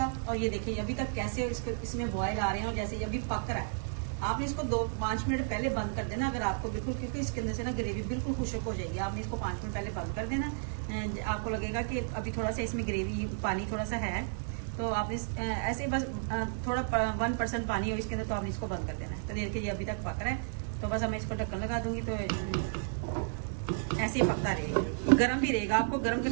और ये देखिए अभी तक कैसे इसमें बॉयल आ रहे हैं और जैसे अभी पक रहा है। आपने इसको 2-5 मिनट पहले बंद कर देना अगर आपको बिल्कुल, क्योंकि इसके अंदर से ना ग्रेवी बिल्कुल खुश्क हो जाएगी। आपने इसको 5 मिनट पहले बंद कर देना। आपको लगेगा कि अभी थोड़ा सा इसमें ग्रेवी पानी थोड़ा सा है, तो आपने ऐसे बस थोड़ा 1% पानी हो इसके अंदर, तो आपने इसको बंद कर देना है। तो देखिए ये अभी तक पक रहा है। तो बस मैं इसको ढक्कन लगा दूंगी तो ऐसे ही पकता रहेगा। गर्म भी रहेगा, आपको गर्म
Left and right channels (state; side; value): silent; left; digital silence